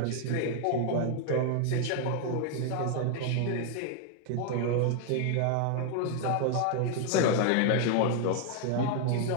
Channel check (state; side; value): different; both; correlation 0.00